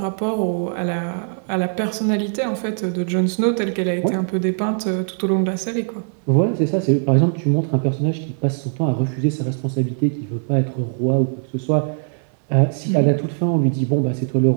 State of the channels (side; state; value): left; silent; digital silence